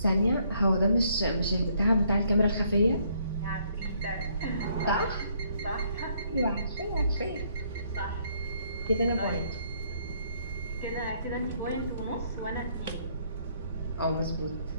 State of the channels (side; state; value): both; inverted; correlation -0.68